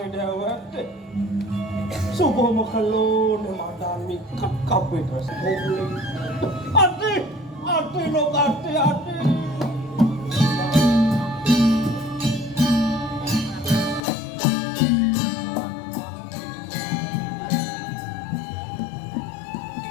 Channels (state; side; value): drops out; right; at 14.0 s